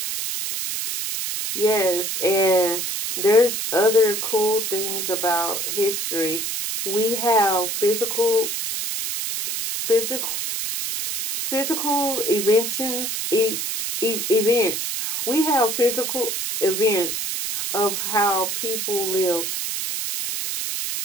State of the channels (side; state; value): right; noise; hiss, 3 dB below the sound